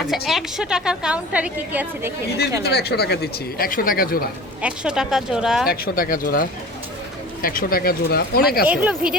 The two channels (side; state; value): both; normal; correlation 0.38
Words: আচ্ছা, দিচ্ছি। 100 টাকার কাউন্টারে কি কি আছে দেখে নিন। ঈদের ভিতরে 100 টাকা দিচ্ছি, 100 টাকা জোড়া, 100 টাকা জোড়া, 100 টাকা জোড়া, 100 টাকা জোড়া, অনেক আছে। এগুলো